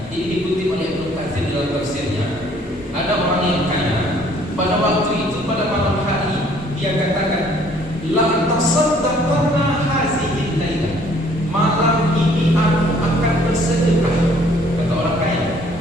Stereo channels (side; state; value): both; normal; correlation 0.60